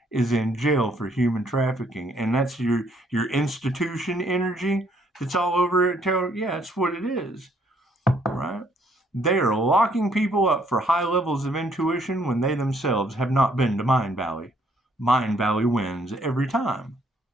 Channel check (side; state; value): both; normal; correlation 0.67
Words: is in jail for human trafficking, and that's your institution energy that's all over it. Tarot, yeah, that's what it is, right? They are locking people up for high levels of intuition when they themselves have not been to Mind Valley. Mind Valley wins every time.